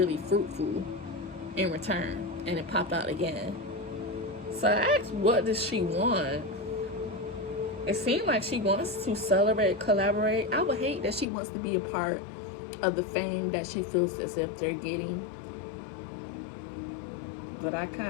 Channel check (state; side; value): drops out; right; at 11.2 s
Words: fruitful in return. And it popped out again. So I asked, what does she want? It seemed like she wants to celebrate, collaborate. I would hate that she wants to be a part of the fame that she feels as if they're getting. But I